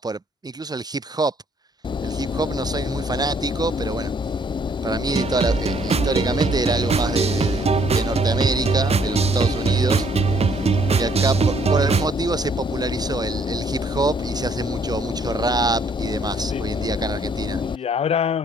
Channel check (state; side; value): normal; both; correlation 0.65